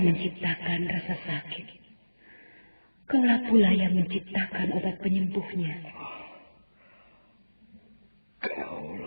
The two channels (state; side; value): inverted; both; correlation -1.00